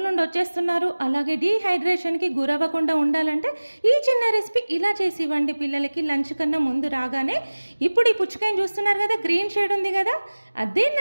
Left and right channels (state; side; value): inverted; both; correlation -1.00